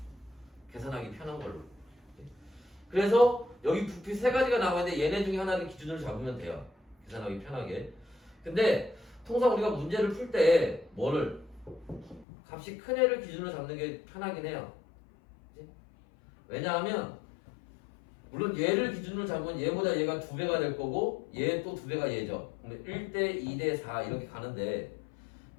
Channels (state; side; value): drops out; right; at 12.2 s